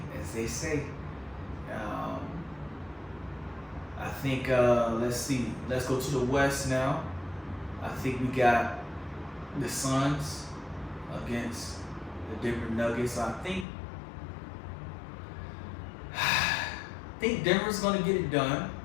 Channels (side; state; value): right; drops out; at 13.7 s